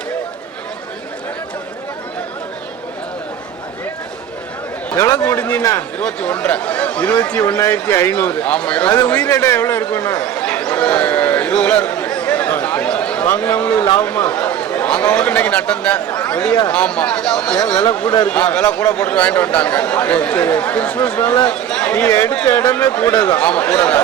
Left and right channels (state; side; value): quieter; left; 9.7 dB